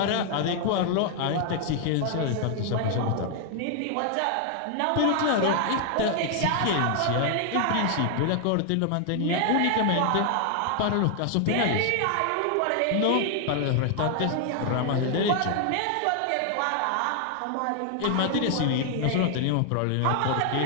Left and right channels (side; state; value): both; different; correlation 0.00